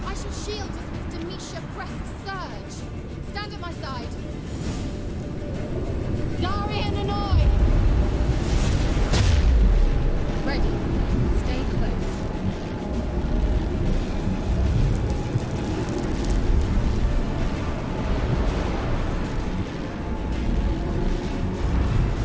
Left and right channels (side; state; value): both; identical; correlation 1.00